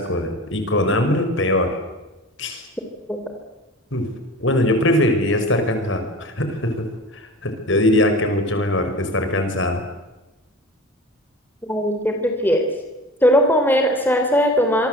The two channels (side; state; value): both; normal; correlation 0.37